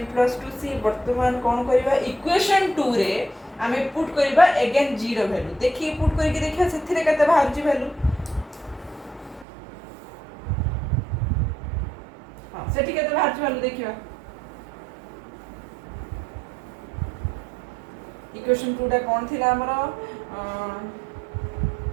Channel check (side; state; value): left; drops out; at 9.5 s